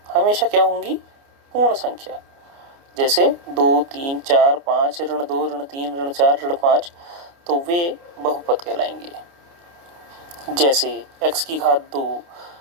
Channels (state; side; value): late; left; 29 ms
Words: हमेशा क्या होंगी? पूर्ण संख्या। जैसे 2, 3, 4, 5, ऋण 2, ऋण 3, ऋण 4, ऋण 5, तो वे बहुपद कहलाएंगे। जैसे x की घात 2,